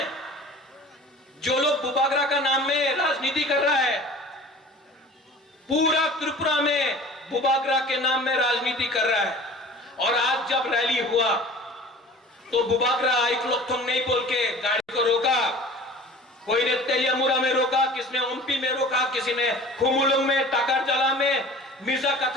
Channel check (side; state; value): both; normal; correlation 0.43